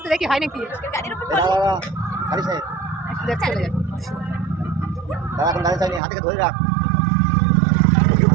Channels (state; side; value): drops out; left; at 6.0 s